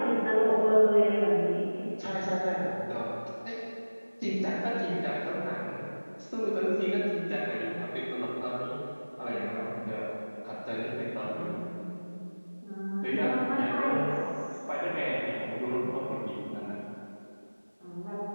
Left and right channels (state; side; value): inverted; both; correlation -1.00